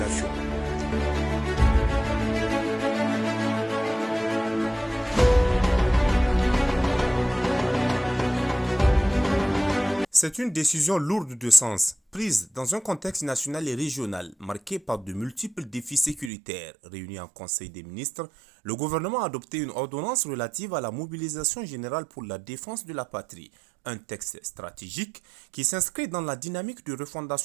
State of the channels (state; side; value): drops out; left; at 16.3 s